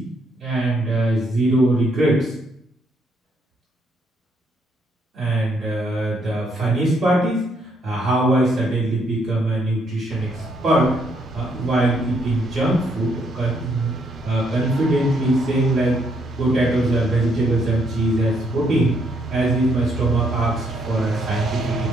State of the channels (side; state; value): both; normal; correlation 0.72